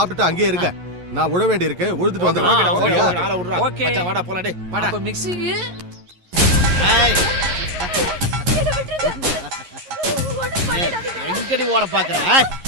அங்கேயே இருக்க. நான் உழ வேண்டி இருக்கு, உழுதுட்டு வந்துடுறேன். ஓகே வாடா போலாம் டேய் வாடா. அப்ப மிக்ஸிக்கு எங்கடி ஓட பாக்குற?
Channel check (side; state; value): left; late; 11 ms